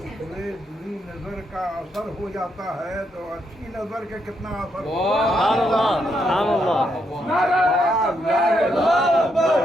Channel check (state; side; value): normal; both; correlation 0.78